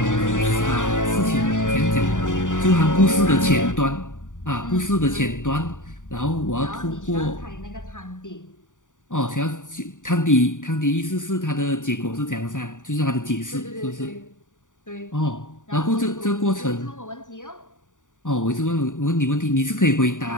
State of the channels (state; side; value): late; right; 0.87 ms